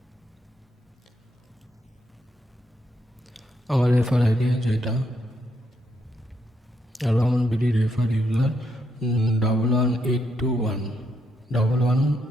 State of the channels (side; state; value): both; normal; correlation 0.78